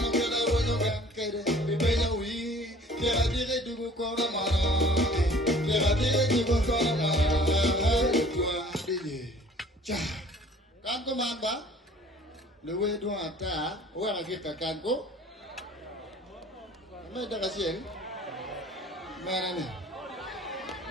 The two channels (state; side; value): normal; both; correlation 0.51